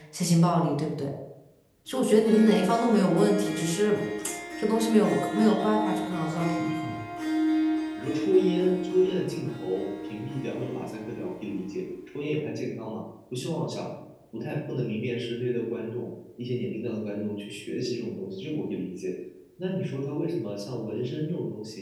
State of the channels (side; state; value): both; identical; correlation 1.00